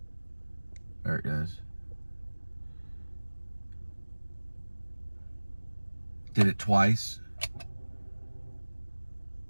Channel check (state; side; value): inverted; both; correlation -1.00